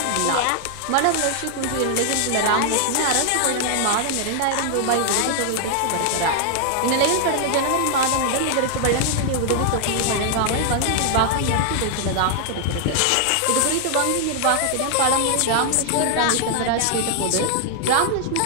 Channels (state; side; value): different; both; correlation 0.00